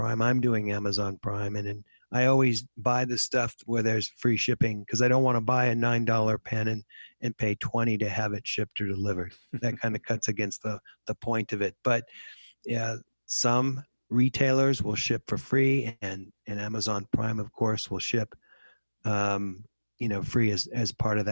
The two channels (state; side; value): inverted; both; correlation -1.00